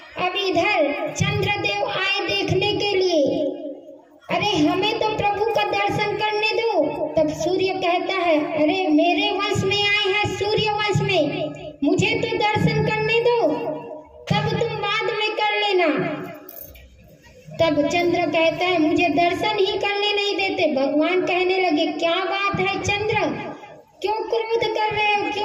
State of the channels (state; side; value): identical; both; correlation 1.00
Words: अब इधर चंद्रदेव आए देखने के लिए, अरे हमें तो प्रभु का दर्शन करने दो। तब सूर्य कहता है अरे मेरे वंश में आए हैं, सूर्य वंश में, मुझे तो दर्शन करने दो, तब तुम बाद में कर लेना। तब चंद्र कहता है मुझे दर्शन ही करने नहीं देते। भगवान कहने लगे क्या बात है चंद्र, क्यों क्रोध कर रहे हो,